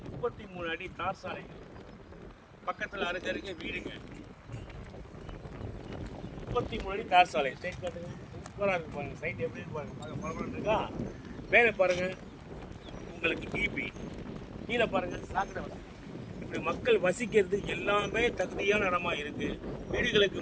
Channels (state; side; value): identical; both; correlation 1.00